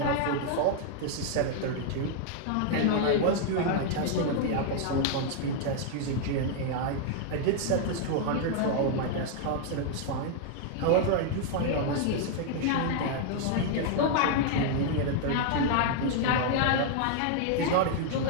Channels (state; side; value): different; both; correlation 0.00